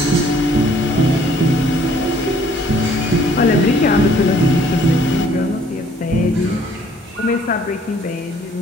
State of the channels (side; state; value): both; normal; correlation 0.60